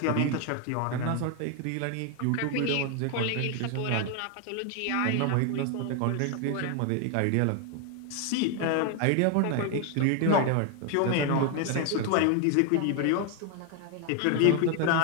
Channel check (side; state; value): both; different; correlation 0.01